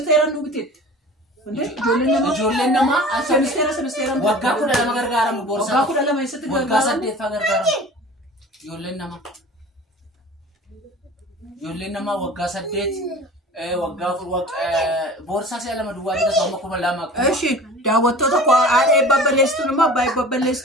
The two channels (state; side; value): normal; both; correlation 0.40